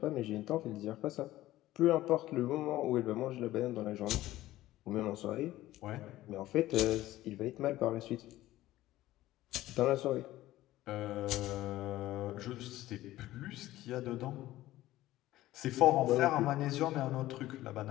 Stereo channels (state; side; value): quieter; right; 15.7 dB